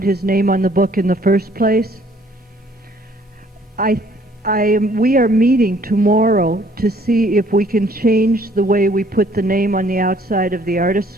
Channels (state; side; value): normal; both; correlation 0.61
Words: his name on the book in the first place? We are meeting tomorrow to see if we can change the way we put the name on the outside of The